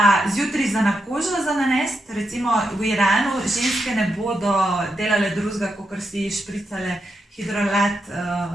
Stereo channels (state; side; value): normal; both; correlation 0.84